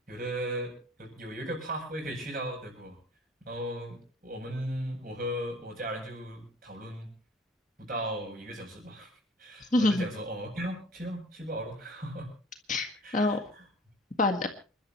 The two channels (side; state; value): both; normal; correlation 0.49